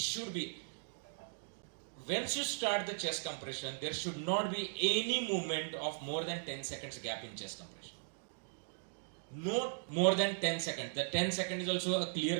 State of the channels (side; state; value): left; silent; digital silence